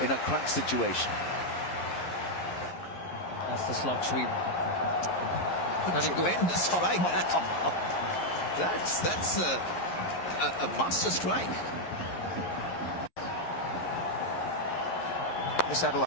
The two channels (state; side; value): late; right; 11 ms